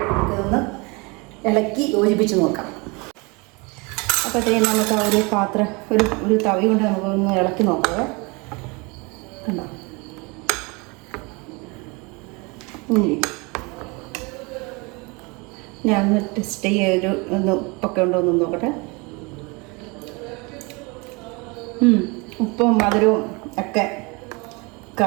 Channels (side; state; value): left; quieter; 28.1 dB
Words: ഇളക്കി യോജിപ്പിച്ച് നോക്കാം. അപ്പോൾ അതേ നമുക്ക് ആ ഒരു പാത്രം ഒരു തവി കൊണ്ട് നമുക്കൊന്ന് ഇളക്കി നോക്കാം. കണ്ടോ ഞാൻ ഒന്ന് ടെസ്റ്റ് ചെയ്യൊരു ഒന്ന് ഉപ്പൊക്കെ ഉണ്ടോ എന്ന് നോക്കട്ടെ. ഉപ്പും മധുരവും ഒക്കെ